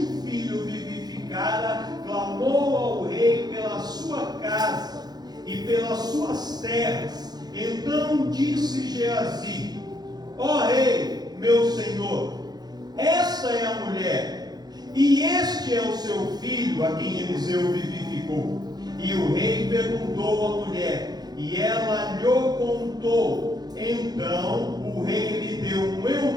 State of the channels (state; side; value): late; left; 0.19 ms